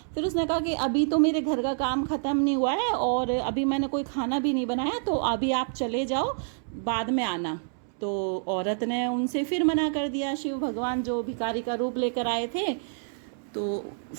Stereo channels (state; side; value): silent; left; 60 dB below the other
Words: फिर उसने कहा कि अभी तो मेरे घर का काम ख़त्म नहीं हुआ है और अभी मैंने कोई खाना भी नहीं बनाया, तो अभी आप चले जाओ, बाद में आना। तो औरत ने उनसे फिर मना कर दिया। शिव भगवान जो भिखारी का रूप लेकर आए थे, तो